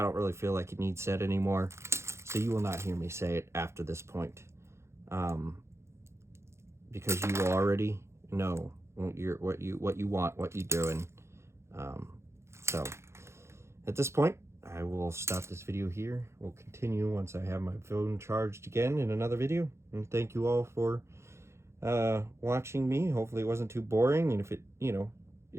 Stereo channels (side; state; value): left; late; 0.13 ms